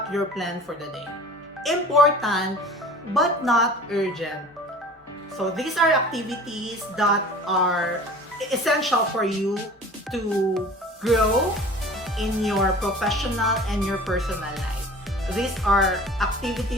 your plan for the day. Important but not urgent. So these are activities that are essential for you to grow in your professional and your personal life. These are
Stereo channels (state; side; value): normal; both; correlation 0.43